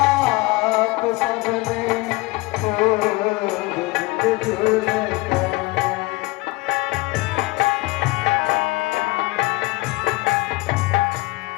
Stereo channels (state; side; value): quieter; right; 22.5 dB